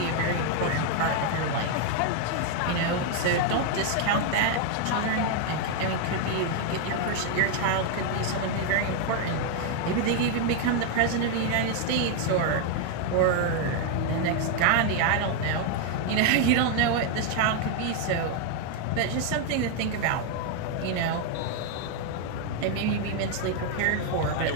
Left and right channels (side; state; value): both; different; correlation 0.00